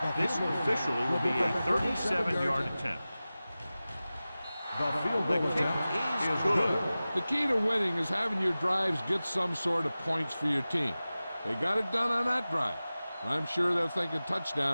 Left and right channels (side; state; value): both; inverted; correlation -0.96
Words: This officially will be a 37-yard attempt. The field The goal kick attempt is good. The key to winning is having your drives get some sort of points for your team. They got it done on that drive. And I'm sure they're thinking